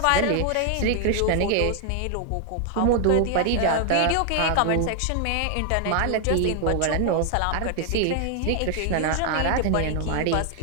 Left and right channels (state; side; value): different; both; correlation 0.00